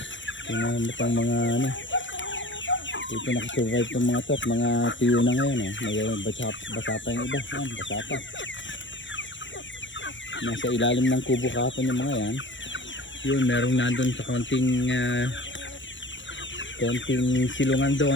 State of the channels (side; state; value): right; late; 0.54 ms